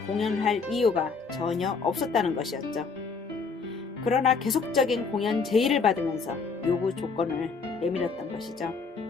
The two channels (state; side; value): quieter; right; 4.8 dB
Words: 공연할 이유가 전혀 없었다는 것이었죠. 그러나 계속적인 공연 제의를 받으면서 요구 조건을 내밀었던 것이죠.